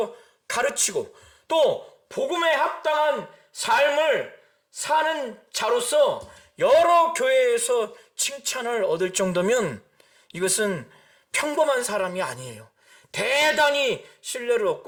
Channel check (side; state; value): both; identical; correlation 1.00